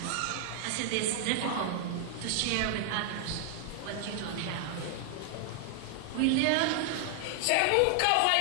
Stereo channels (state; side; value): different; both; correlation 0.00